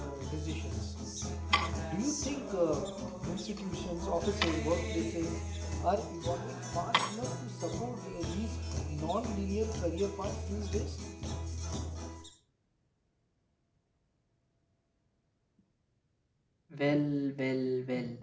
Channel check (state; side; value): identical; both; correlation 1.00